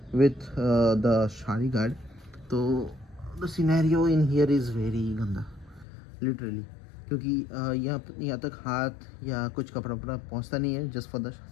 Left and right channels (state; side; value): drops out; right; at 5.9 s